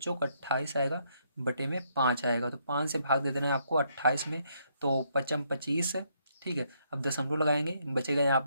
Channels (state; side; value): inverted; both; correlation -0.73